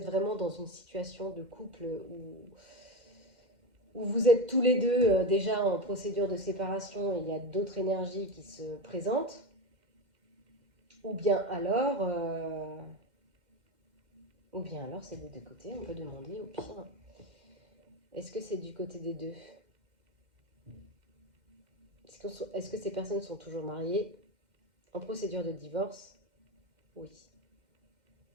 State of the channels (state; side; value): late; left; 2.1 ms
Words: vraiment dans une situation de couple où vous êtes tous les deux déjà en procédure de séparation et il y a d'autres énergies qui se présentent. Ou bien alors c'est des deux côtés, on peut demander au pire. Est-ce que c'est du côté des deux? Est-ce que ces personnes sont toujours mariées, en procédure de divorce? Oui.